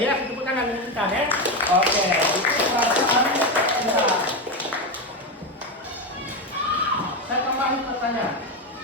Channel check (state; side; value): normal; both; correlation 0.13